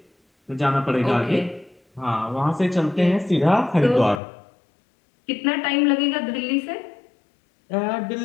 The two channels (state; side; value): drops out; right; at 4.2 s